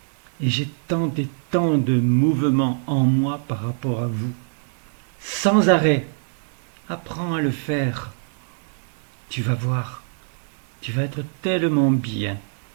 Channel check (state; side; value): silent; left; digital silence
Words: Et j'ai tant et tant de mouvements en moi par rapport à vous. Sans arrêt. Apprends à le faire. Tu vas voir. Tu vas être tellement bien,